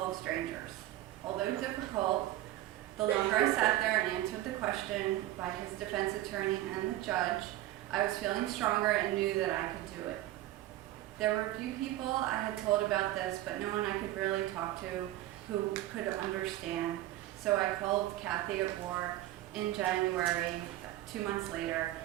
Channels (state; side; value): quieter; left; 15.0 dB